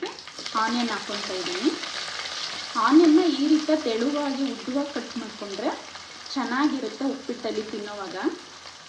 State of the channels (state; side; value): identical; both; correlation 1.00